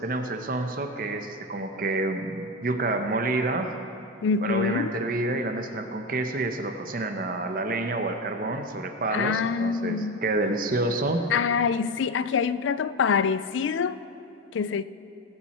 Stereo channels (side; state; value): both; normal; correlation 0.17